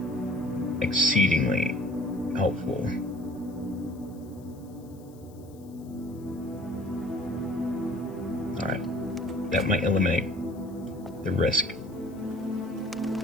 exceedingly helpful. Alright, that might eliminate the risk.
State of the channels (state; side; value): noise; left; hiss, 28 dB below the sound